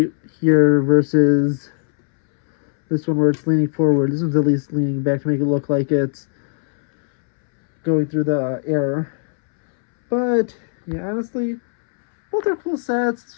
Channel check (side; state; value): right; silent; 67 dB below the other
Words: here versus this one where it's leaning forward. This one's at least leaning back to make it look like it's going through the air. But yeah, honestly, both are cool sets. It's